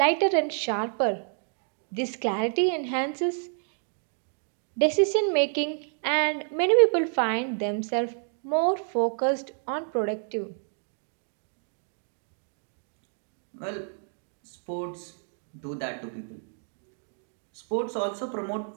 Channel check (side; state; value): left; silent; 59 dB below the other